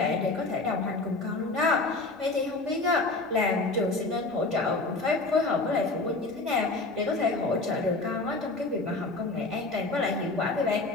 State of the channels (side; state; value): right; quieter; 3.2 dB